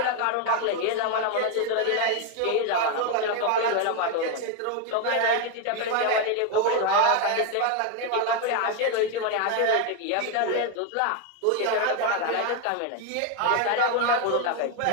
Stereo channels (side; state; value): both; different; correlation 0.01